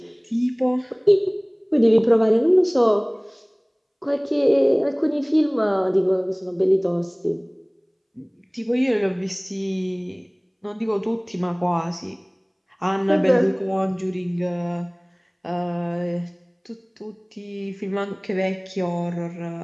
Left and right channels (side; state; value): both; identical; correlation 1.00